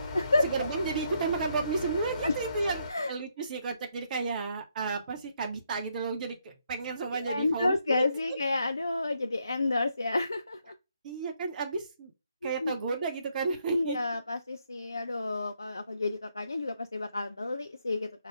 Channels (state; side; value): inverted; both; correlation -0.75